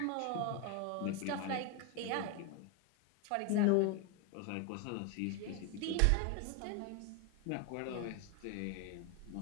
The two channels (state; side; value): different; both; correlation 0.01